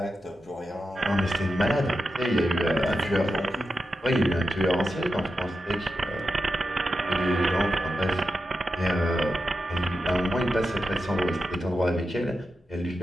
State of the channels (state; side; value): normal; both; correlation 0.89